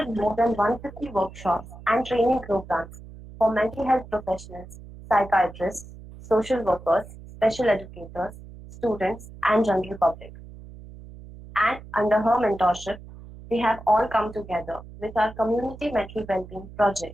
more than 150 workshops and training programs for mental health professionals, psychiatrists, social workers, special educators, students, and general public. And under her mentorship, we have all come together with our community mental well-being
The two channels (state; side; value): noise; right; hum, 17 dB below the sound